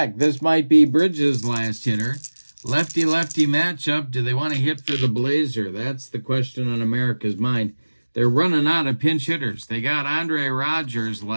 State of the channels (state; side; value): inverted; both; correlation -1.00